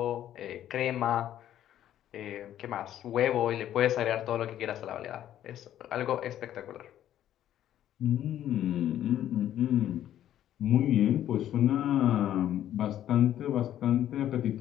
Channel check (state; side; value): quieter; right; 11.6 dB